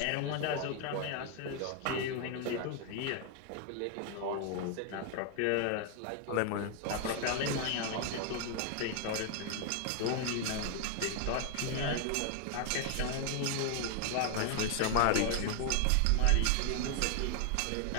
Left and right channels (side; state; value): both; different; correlation 0.00